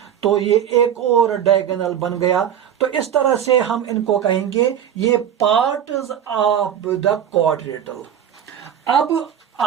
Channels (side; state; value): left; quieter; 9.5 dB